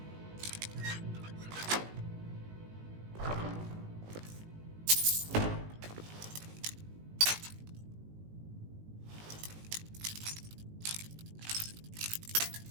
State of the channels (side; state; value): left; late; 19 ms